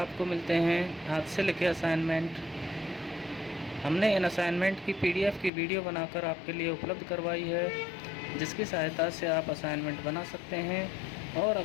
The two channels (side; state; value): right; drops out; at 5.5 s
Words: मिलते हैं हाथ से लिखे असाइनमेंट। हमने इन असाइनमेंट की PDF की वीडियो बनाकर आपके लिए उपलब्ध करवाई है, जिसकी सहायता से आप असाइनमेंट बना सकते हैं। और